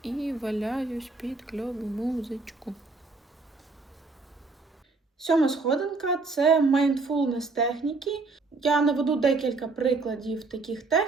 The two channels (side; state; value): left; quieter; 3.8 dB